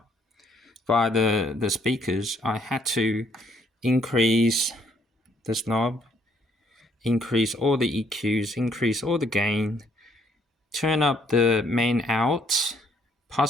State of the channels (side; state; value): both; normal; correlation 0.67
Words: via the speakers, I had to increase this knob, increase all the EQs, increase all the gain, turn up the main out.